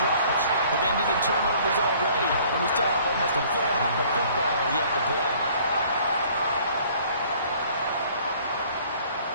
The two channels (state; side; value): inverted; both; correlation -0.55